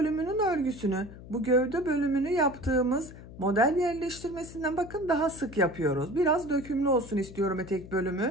örgüsünü, bu gövde bölümünü yaptığımız model yerleştirmesinden bakın daha sık yapıyoruz. Biraz dökümlü olsun istiyorum etek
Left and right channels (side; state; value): left; noise; hum, 16 dB below the sound